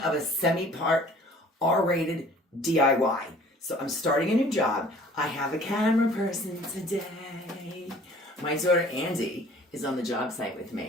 a semi-part R-rated DIY. So I'm starting a new job. I have a camera person today. My daughter Andy is on the job site with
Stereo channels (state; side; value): normal; both; correlation 0.51